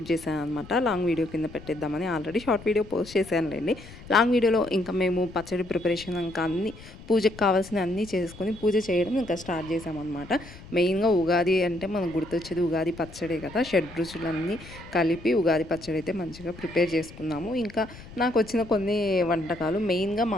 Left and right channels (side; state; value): left; noise; rumble, 17 dB below the sound